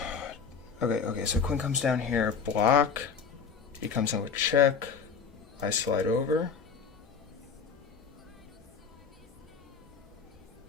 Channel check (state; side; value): quieter; right; 6.0 dB